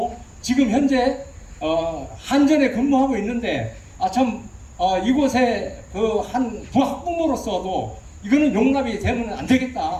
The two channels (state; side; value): identical; both; correlation 1.00